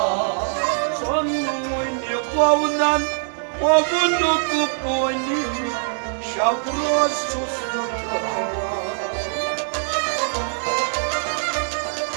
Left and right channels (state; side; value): silent; left; 64 dB below the other